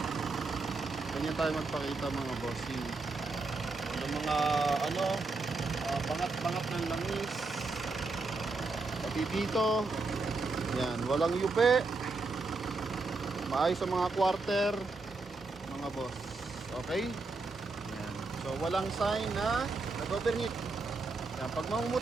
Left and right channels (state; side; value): quieter; left; 3.7 dB